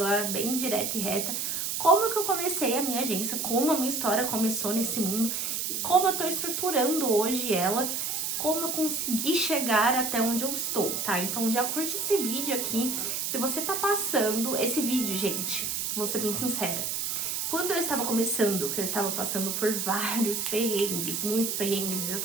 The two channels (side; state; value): right; noise; hiss, 1 dB below the sound